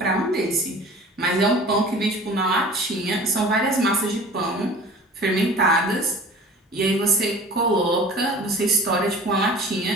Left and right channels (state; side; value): normal; both; correlation 0.43